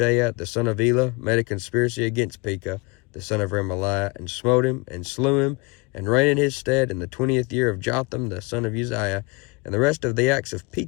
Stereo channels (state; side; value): quieter; right; 27.9 dB